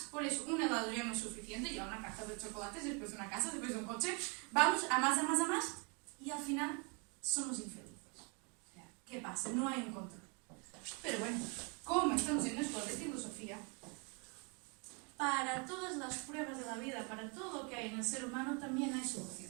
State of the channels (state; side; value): quieter; left; 34.1 dB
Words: por eso un helado ya no es suficiente, ya una caja de chocolates, después de una casa, después de un coche, vamos a más, y al final somos infelices. O sea, ¿qué pasa? No hay un control. Pero bueno, como estamos en esto de filosofía, para todas las pruebas de la vida, para todo lo que hay en el ser humano, también hay